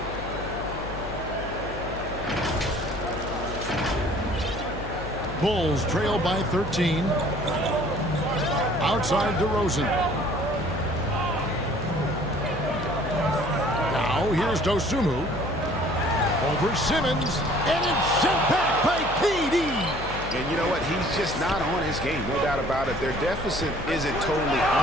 Bulls trail by 13. Outside DeRozan. Now here's Dosunmu. Over Simmons. And it's sent back by KD. And you know what? He's just not on his game, no doubt about it. Their deficit isn't totally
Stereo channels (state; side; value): noise; left; hum, 11 dB below the sound